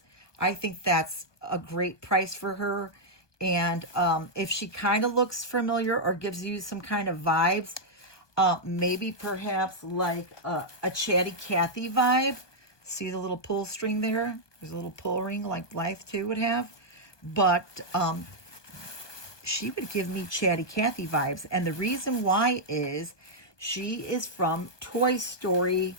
I think that's a great price for her. And if she kind of looks familiar or gives you some kind of vibes, maybe perhaps like a Chatty Cathy vibe. See the little pull string there? There's a little pull ring like Blythe 2 would have. But she would give me Chatty Cathy vibes. And the reason why is she is from Toy Story.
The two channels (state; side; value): late; right; 1.2 ms